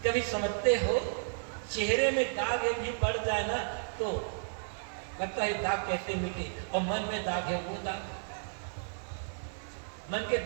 कभी समझते हो चेहरे में दाग एक भी पड़ जाए ना तो लगता है दाग कैसे मिटे, और मन में दाग है वो दाग, मन के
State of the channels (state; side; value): silent; left; 56 dB below the other